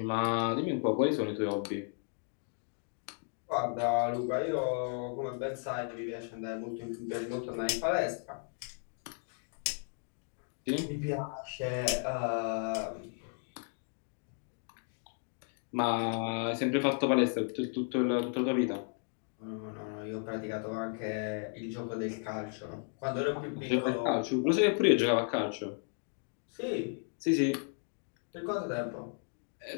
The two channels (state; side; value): silent; right; 55 dB below the other